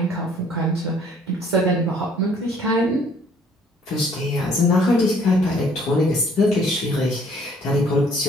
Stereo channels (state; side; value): normal; both; correlation 0.59